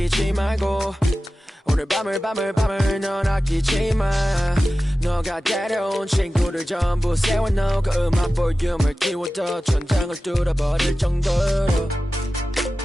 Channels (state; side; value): normal; both; correlation 0.95